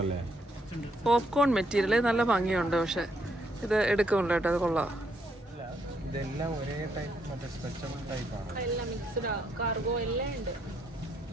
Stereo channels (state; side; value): normal; both; correlation 0.74